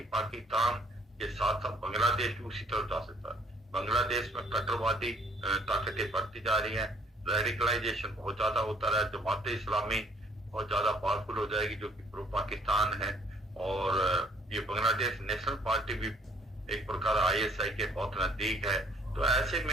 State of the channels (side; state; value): both; normal; correlation 0.61